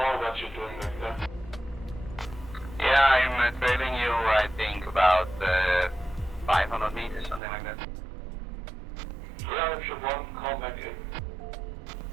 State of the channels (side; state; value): left; drops out; at 7.4 s